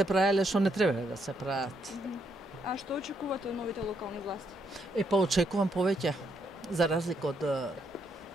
правеле што не требале да се прават. А што очекувате од новите локални власти? Па очекувам повеќе, за разлика од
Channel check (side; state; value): both; normal; correlation 0.75